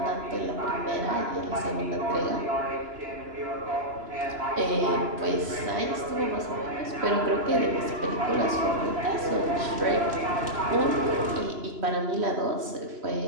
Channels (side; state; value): left; late; 2.9 ms